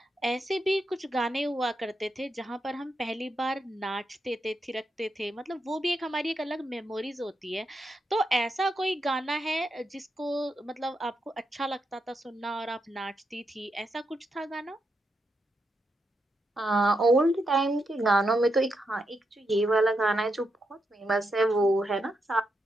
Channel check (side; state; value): both; normal; correlation 0.83